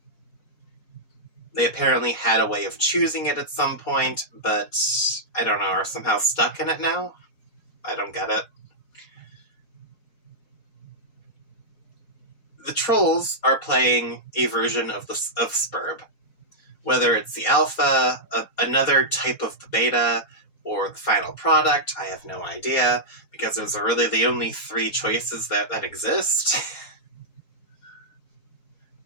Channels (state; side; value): late; right; 4.2 ms